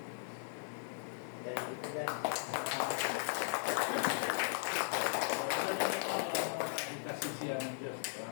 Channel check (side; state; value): right; silent; digital silence